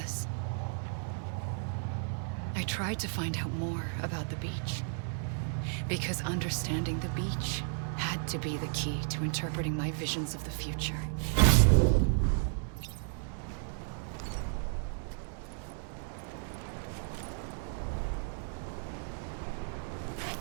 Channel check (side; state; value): left; silent; 55 dB below the other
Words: I tried to find out more about the beach. Because understanding the beach had to be the key to interpreting my visions of the future.